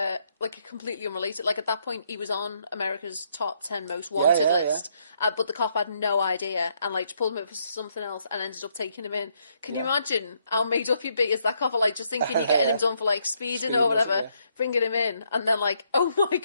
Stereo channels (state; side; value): inverted; both; correlation -0.73